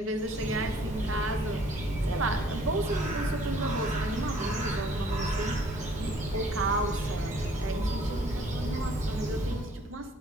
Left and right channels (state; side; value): normal; both; correlation 0.58